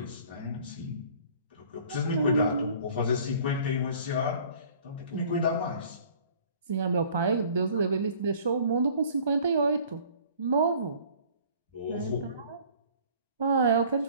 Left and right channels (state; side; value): inverted; both; correlation -0.52